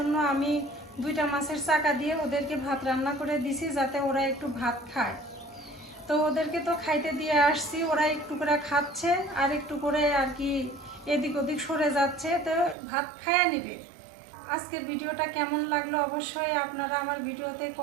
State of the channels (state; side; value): drops out; left; at 12.8 s